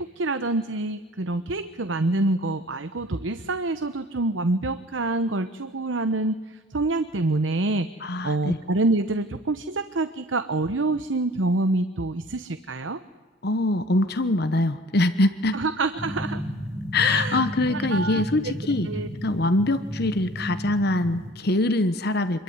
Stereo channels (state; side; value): normal; both; correlation 0.48